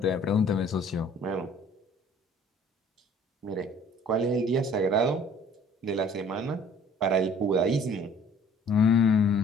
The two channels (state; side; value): normal; both; correlation 0.53